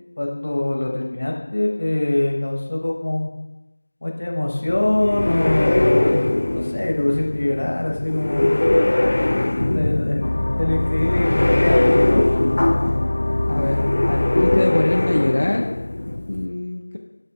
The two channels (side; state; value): both; inverted; correlation -1.00